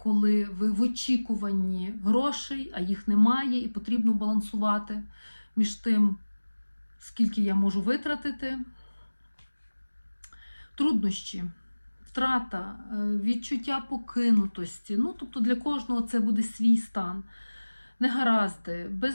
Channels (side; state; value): both; inverted; correlation -1.00